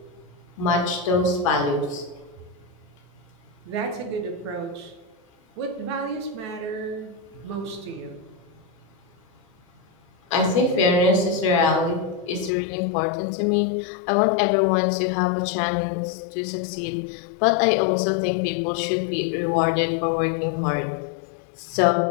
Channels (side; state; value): right; drops out; at 12.5 s